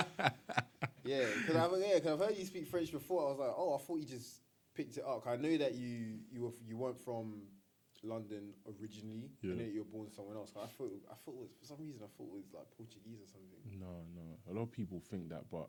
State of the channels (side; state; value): both; identical; correlation 1.00